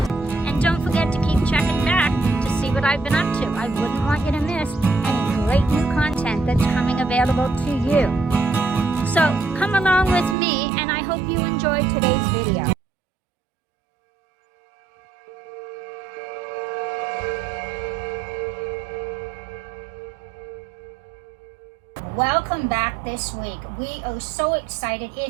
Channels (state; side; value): drops out; left; at 10.4 s